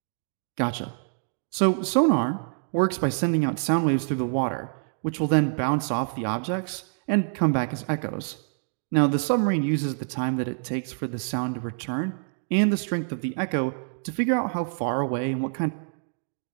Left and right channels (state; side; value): silent; left; 59 dB below the other